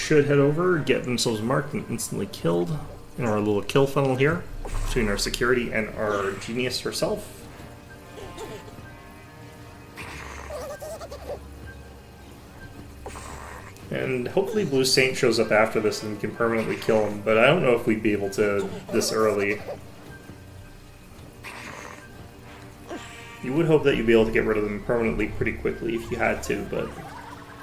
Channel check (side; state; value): both; identical; correlation 1.00